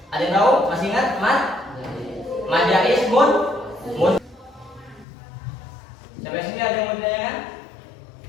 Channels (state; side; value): drops out; right; at 5.1 s